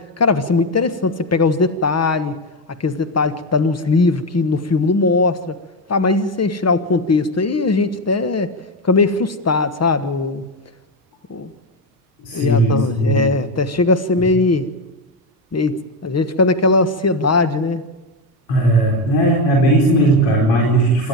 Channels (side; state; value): both; normal; correlation 0.12